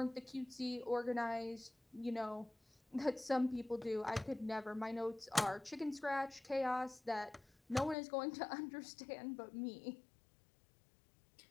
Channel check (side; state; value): right; drops out; at 8.0 s